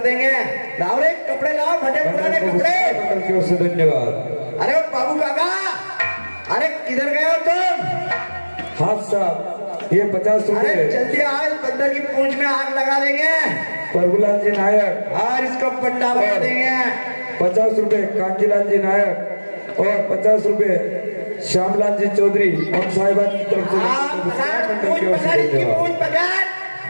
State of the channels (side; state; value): both; inverted; correlation -1.00